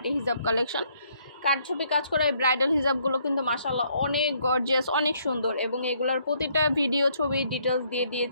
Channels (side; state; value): both; inverted; correlation -0.68